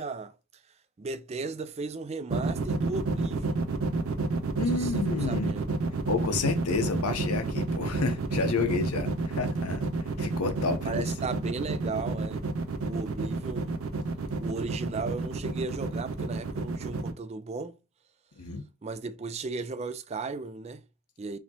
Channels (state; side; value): normal; both; correlation 0.44